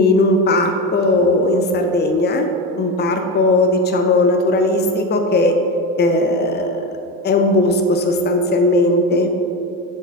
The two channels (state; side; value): normal; both; correlation 0.19